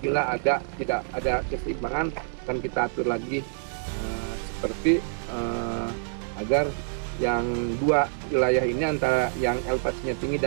tidak ada keseimbangan akan kita atur lagi seperti agar yang dua wilayah ini antara yang elevasinya tinggi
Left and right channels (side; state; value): left; silent; 60 dB below the other